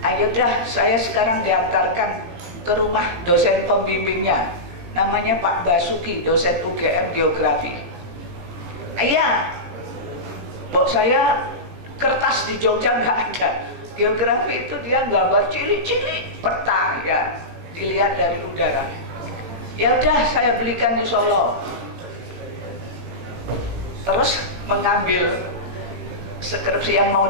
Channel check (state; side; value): late; left; 17 ms